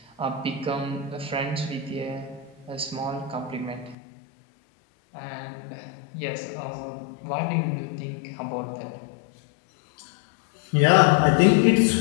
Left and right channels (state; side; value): drops out; right; at 4.0 s